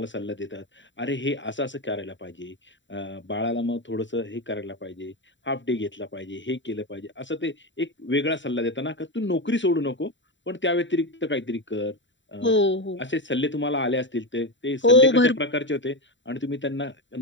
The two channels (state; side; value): late; right; 0.54 ms